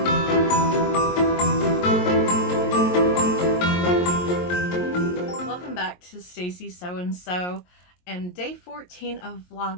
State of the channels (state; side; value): late; right; 22 ms